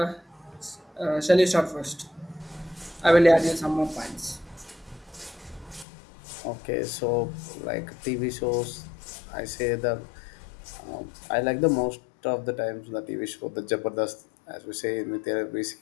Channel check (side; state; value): right; drops out; at 5.9 s